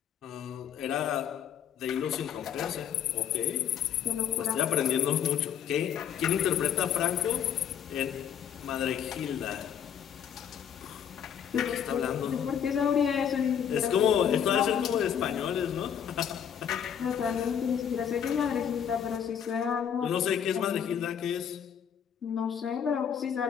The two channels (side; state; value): right; quieter; 8.6 dB